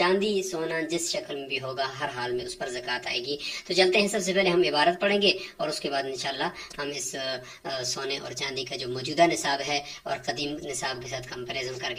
سونا جس شکل میں بھی ہوگا، ہر حال میں اس پر زکوٰۃ آئے گی۔ تو چلتے ہیں، سب سے پہلے ہم عبارت پڑھیں گے، اور اس کے بعد انشاءاللہ ہم اس سونے اور چاندی کا جو موجودہ نصاب ہے اور قدیم نصاب کے ساتھ کمپیریزن کر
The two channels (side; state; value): both; identical; correlation 1.00